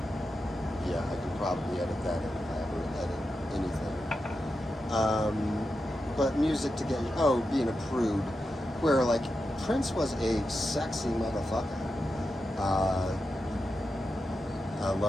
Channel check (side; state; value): both; normal; correlation 0.89